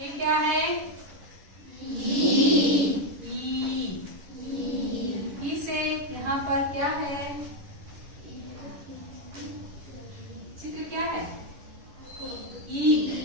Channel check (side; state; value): left; late; 11 ms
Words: क्या है? ई से यहाँ पर क्या है? चित्र क्या है?